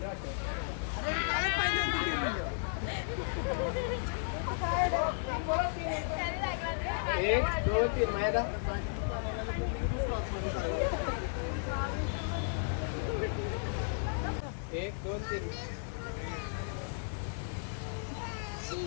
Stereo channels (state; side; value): silent; right; digital silence